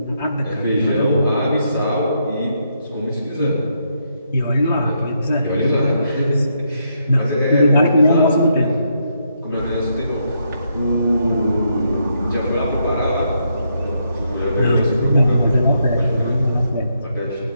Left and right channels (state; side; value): inverted; both; correlation -0.78